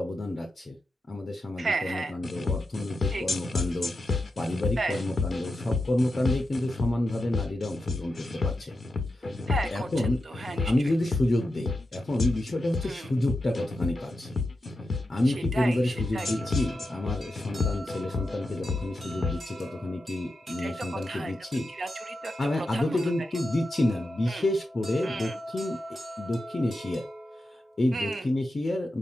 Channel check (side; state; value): both; normal; correlation 0.89